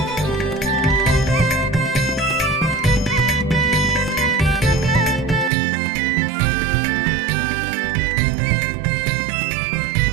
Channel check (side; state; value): left; drops out; at 5.5 s